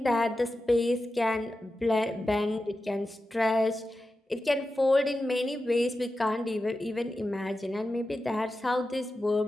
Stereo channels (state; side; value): normal; both; correlation 0.92